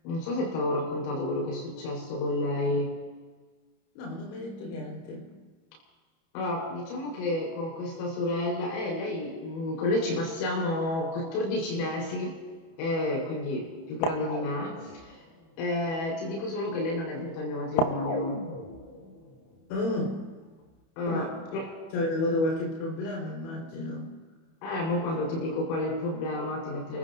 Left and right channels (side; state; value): right; late; 31 ms